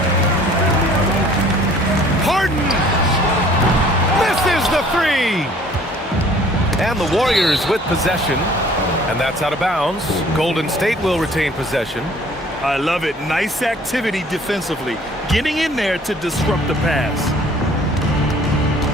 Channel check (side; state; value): both; normal; correlation 0.54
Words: Harden misses the 3. And the Warriors with possession. And that's out of bounds. Golden State will retain possession. I love it. Nice activity defensively. Getting in there to disrupt the pass.